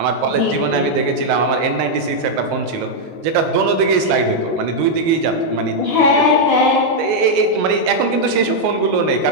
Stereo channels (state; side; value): late; left; 19 ms